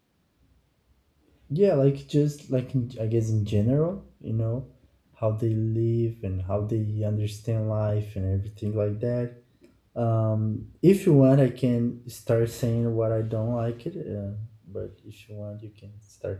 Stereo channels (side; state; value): both; identical; correlation 1.00